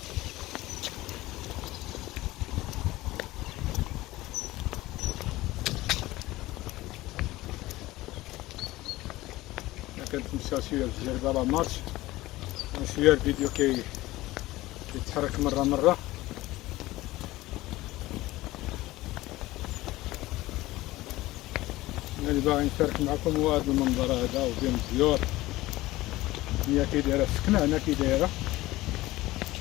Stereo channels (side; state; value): right; quieter; 18.0 dB